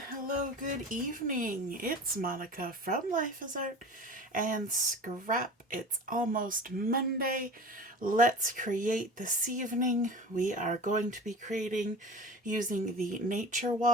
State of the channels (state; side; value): normal; both; correlation 0.36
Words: good evening. It's Monica from Life is Art and Scrap. It's almost Monday. Let's create this evening. We are going to be creating using the Nature